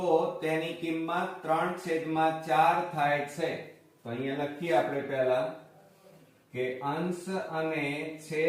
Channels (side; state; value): both; identical; correlation 1.00